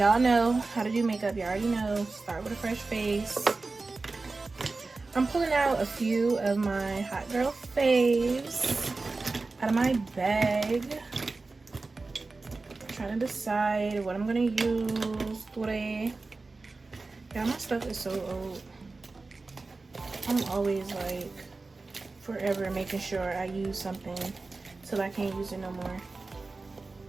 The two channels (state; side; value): quieter; left; 3.7 dB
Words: know how to do makeup. You already know. Start with a fresh face. I'm pulling out a few of my hot girl faves out of my bag. Trying to decide what I'm gonna use today. Yeah, my stuff is so old. I'm always like forever making sure I use something till I can't use it no more.